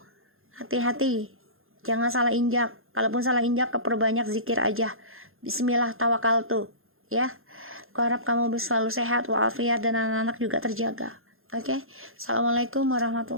Hati-hati, jangan salah injak. Kalaupun salah injak, perbanyak zikir aja. Bismillah tawakkaltu ya. Aku harap kamu selalu sehat walafiat dan anak-anak juga terjaga. Oke. Assalamualaikum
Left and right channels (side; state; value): left; late; 0.60 ms